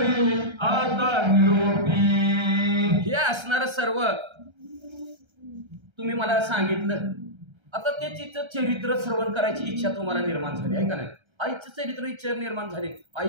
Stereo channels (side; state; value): left; late; 1.3 ms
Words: आता निरोपी. हे असणार सर्व तुम्ही मला सांगितलं. आता ते तिचं चरित्र श्रवण करायची इच्छा तुम्हाला निर्माण झाली, आहे का नाही. आईचं चरित्र इच्छा निर्माण झाली, आई